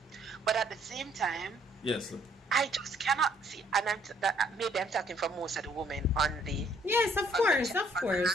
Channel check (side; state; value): both; normal; correlation 0.65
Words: But at the same time, Yes. I just cannot see, and maybe I'm talking for most of the women on the. Yes, of course. Talk We